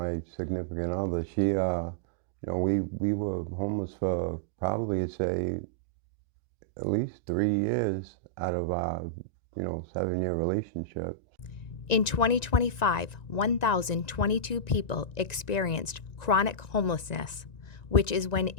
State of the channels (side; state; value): right; late; 1.9 ms